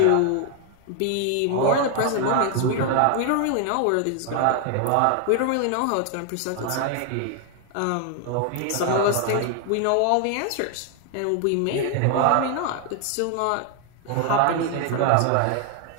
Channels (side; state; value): both; different; correlation 0.00